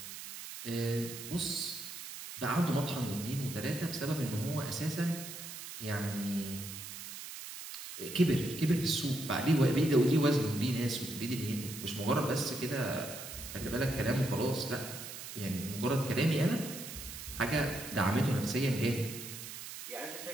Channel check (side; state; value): right; noise; hiss, 10 dB below the sound